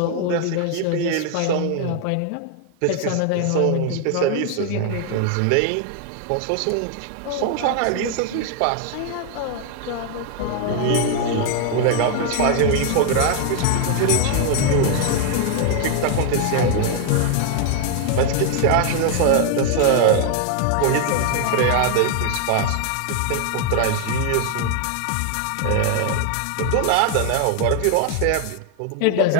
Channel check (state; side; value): different; both; correlation 0.00